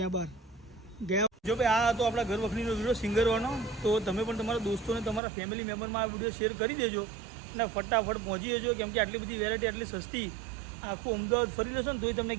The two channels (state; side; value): drops out; left; at 5.2 s